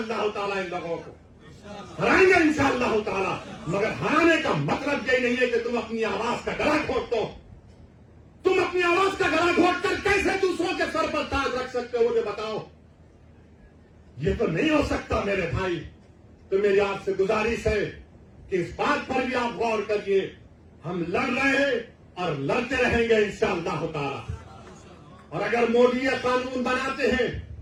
تعالیٰ ان لوگوں کو, ہرائیں گے انشاءاللہ تعالیٰ. مگر ہرانے کا مطلب یہ نہیں ہے کہ تم اپنی آواز کا گلا گھونٹ دو. تم اپنی آواز کا گلا گھونٹ کر کیسے دوسروں کے سر پر تاج رکھ سکتے ہو مجھے بتاؤ. یہ تو نہیں ہو سکتا میرے بھائی. تو میری آپ سے گزارش ہے کہ اس بات پر بھی آپ غور کریے. ہم لڑ رہے ہیں اور لڑتے رہیں گے انشاءاللہ تعالیٰ. اور اگر مودی یہ قانون بناتے ہیں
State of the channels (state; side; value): identical; both; correlation 1.00